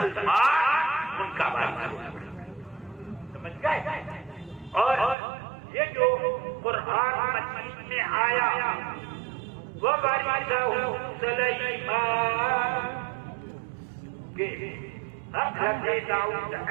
ان کا وارث. سمجھ گئے. اور یہ جو قرآن مجید میں آیا وہ وارثہ سلیمان کہ حضرت داؤد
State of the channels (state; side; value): drops out; left; at 5.2 s